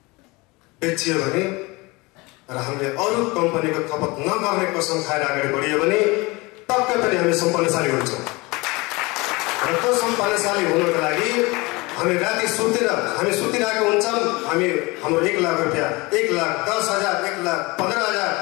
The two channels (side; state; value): right; quieter; 24.2 dB